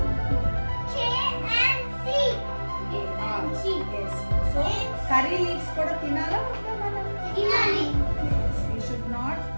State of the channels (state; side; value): inverted; both; correlation -1.00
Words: K and C. Yes. So curry leaves kuda tinala మనం? తినాలి. We should not